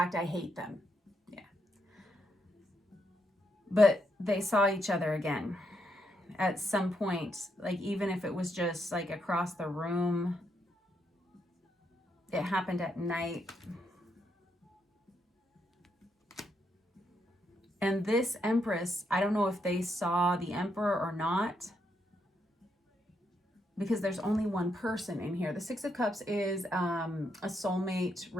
I hate them. Yeah. But they saw each other again at some point, like even if it was just like across the room. It happened at night. And this Empress, I don't know if they saw the Emperor or not, because there's only one person in here. The Six of Cups is a soulmate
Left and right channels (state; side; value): normal; both; correlation 0.79